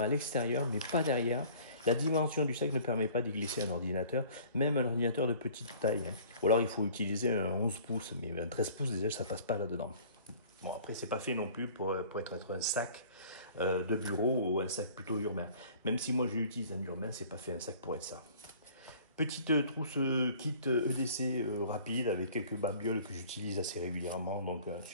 à l'extérieur mais pas derrière. La dimension du sac ne permet pas d'y glisser un ordinateur, même un ordinateur de petite taille. Ou alors il faut utiliser un 11 pouces, mais un 13 pouces déjà ça passe pas là-dedans. Bon après c'est pas fait non plus pour être un sac de bureau ou un sac plutôt urbain. Même si moi j'utilise un urbain, c'est pas fait un sac pour être ça. Petite trousse kit EDC rapide avec quelques babioles que j'utilise assez régulièrement. Donc un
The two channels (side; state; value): both; inverted; correlation -0.49